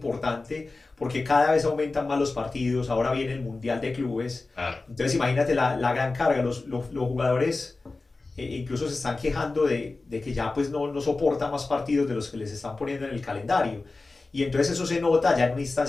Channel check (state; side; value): quieter; right; 3.5 dB